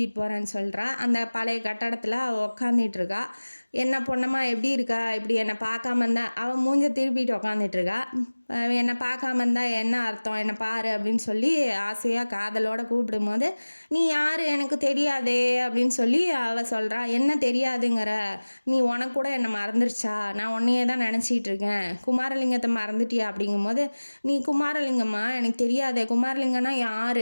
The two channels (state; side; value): inverted; both; correlation -1.00